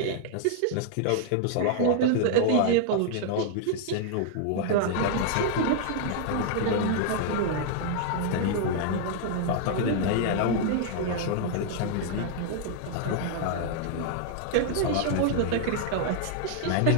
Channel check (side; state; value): both; different; correlation 0.00